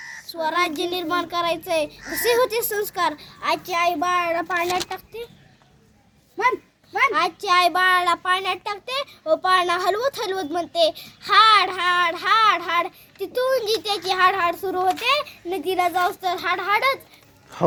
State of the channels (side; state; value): both; identical; correlation 1.00